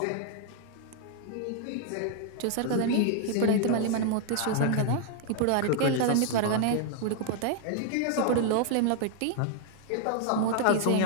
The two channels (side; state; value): both; different; correlation 0.00